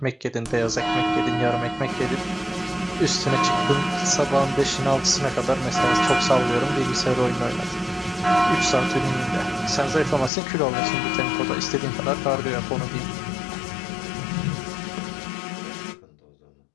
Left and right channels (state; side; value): drops out; right; at 10.3 s